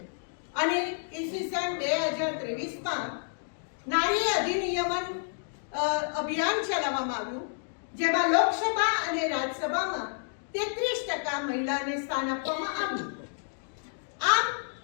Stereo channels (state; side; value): silent; right; digital silence